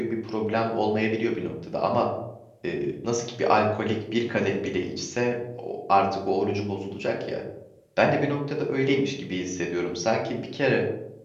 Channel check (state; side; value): identical; both; correlation 1.00